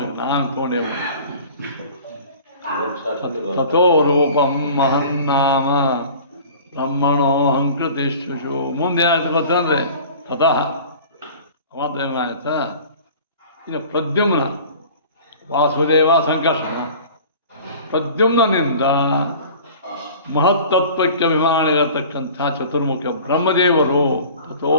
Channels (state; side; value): inverted; both; correlation -0.43